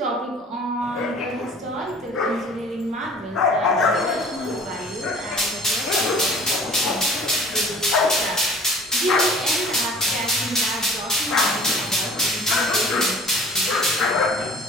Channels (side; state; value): both; normal; correlation 0.48